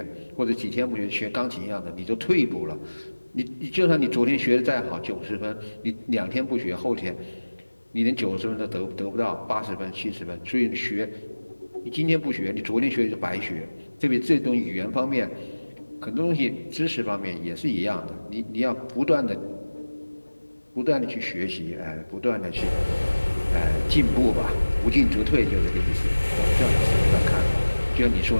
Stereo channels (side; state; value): both; inverted; correlation -1.00